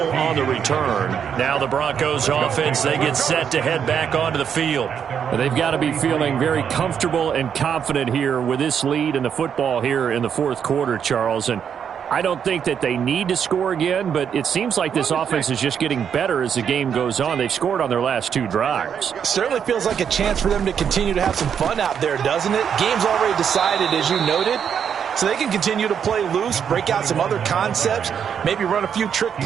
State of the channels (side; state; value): left; quieter; 7.8 dB